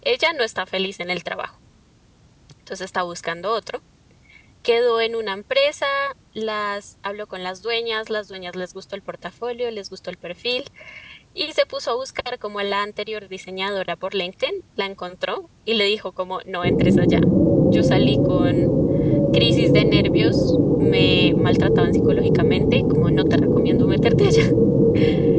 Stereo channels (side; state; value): both; identical; correlation 1.00